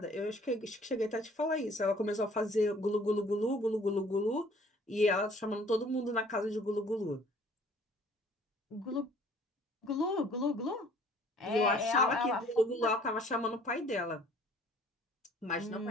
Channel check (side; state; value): both; normal; correlation 0.55